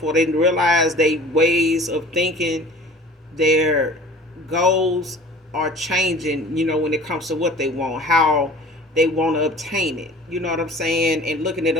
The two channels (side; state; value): both; normal; correlation 0.44